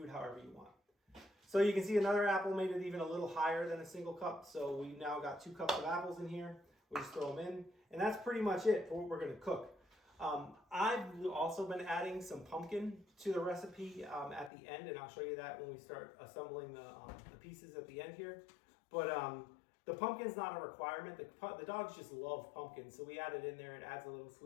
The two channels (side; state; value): right; drops out; at 14.5 s